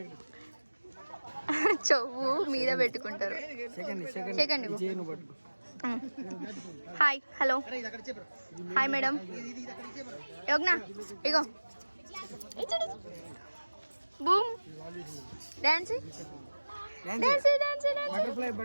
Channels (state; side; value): inverted; both; correlation -1.00